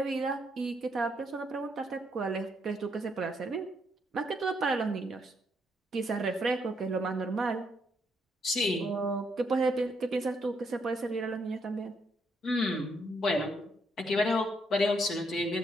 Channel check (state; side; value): normal; both; correlation 0.75